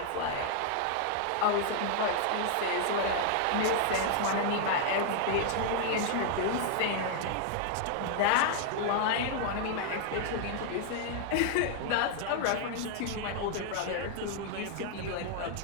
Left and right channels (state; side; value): different; both; correlation 0.00